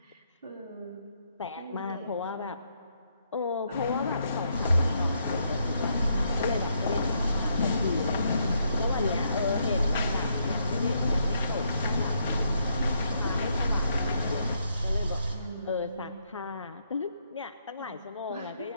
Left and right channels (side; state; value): both; inverted; correlation -0.75